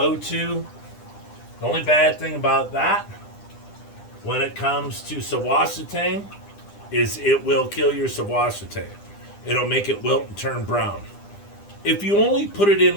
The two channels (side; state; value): right; late; 9.9 ms